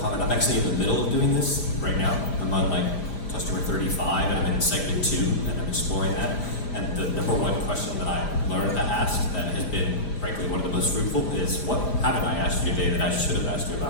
I'm actually in the middle of doing this right now. I'm on like customer 35 and I'm in segment 2 and I'm exploring that. And the number one question that I learned to ask that has been, frankly, one of the most fruitful is, what haven't I asked you today that I should have asked you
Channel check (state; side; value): late; right; 5.1 ms